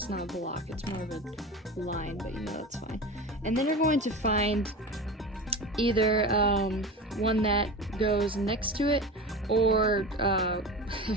not a block, it's more of a line, but you know that's fine. And then you're going to find either one that goes next to it, or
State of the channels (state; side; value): normal; both; correlation 0.29